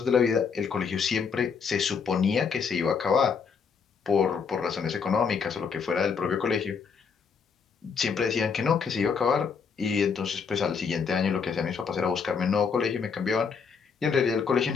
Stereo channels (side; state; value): right; quieter; 5.9 dB